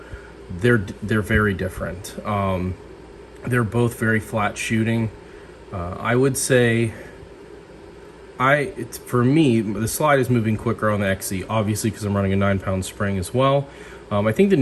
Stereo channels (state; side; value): identical; both; correlation 1.00